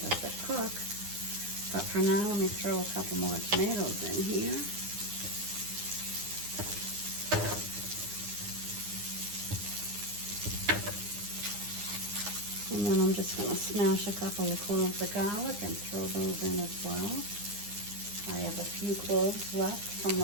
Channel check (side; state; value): left; late; 9.8 ms